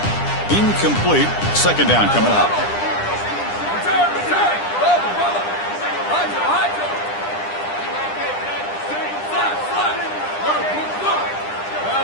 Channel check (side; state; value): right; late; 9.9 ms